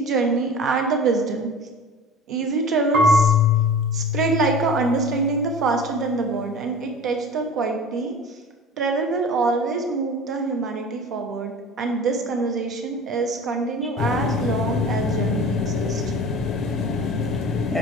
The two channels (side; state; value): both; normal; correlation 0.38